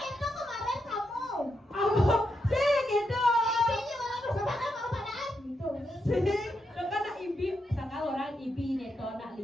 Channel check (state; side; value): normal; both; correlation 0.83